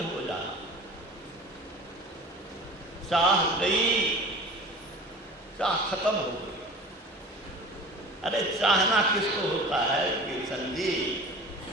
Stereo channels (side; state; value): both; normal; correlation 0.39